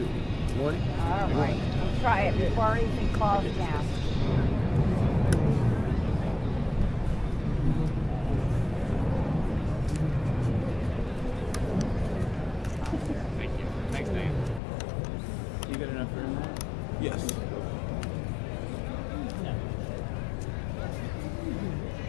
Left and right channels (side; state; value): right; drops out; at 14.6 s